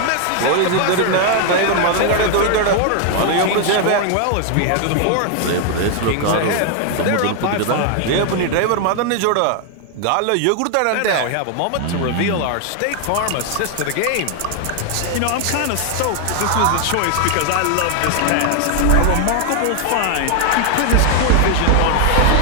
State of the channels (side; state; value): both; different; correlation 0.00